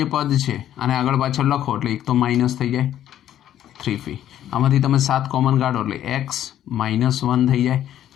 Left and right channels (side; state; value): right; quieter; 11.5 dB